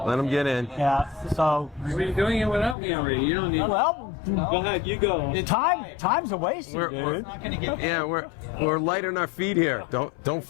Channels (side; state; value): right; drops out; at 2.8 s